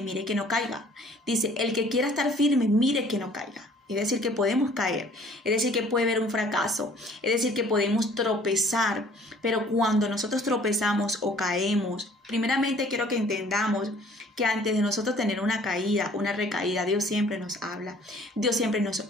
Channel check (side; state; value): both; normal; correlation 0.55